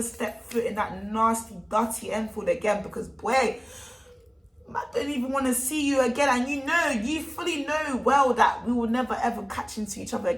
step foot in that nasty, dirty Enfield again, because boy, I don't even want to see you again. And you fully know well that we will never ever catch into each other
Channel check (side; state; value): both; identical; correlation 1.00